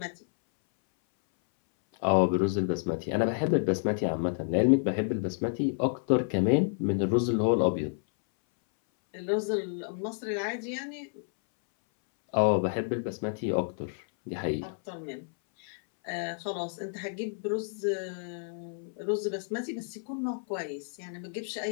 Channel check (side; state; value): right; silent; 58 dB below the other